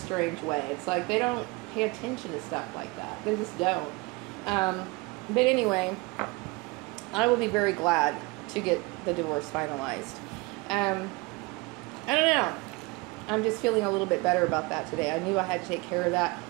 way. It's like they don't pay attention to stuff like that. They just don't. But anyway, I will be very glad to get the divorce finalized. I don't know. I'm just feeling a little bit better about that today. I knew I had to take care of that.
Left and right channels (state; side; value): quieter; left; 25.3 dB